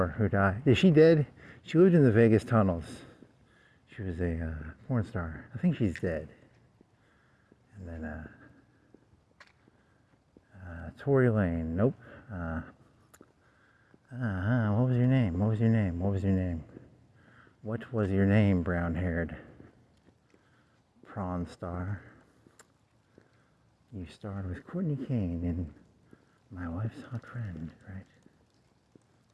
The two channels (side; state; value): both; identical; correlation 1.00